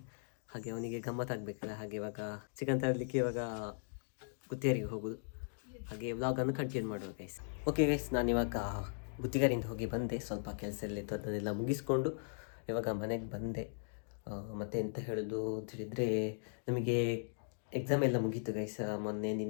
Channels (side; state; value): right; silent; digital silence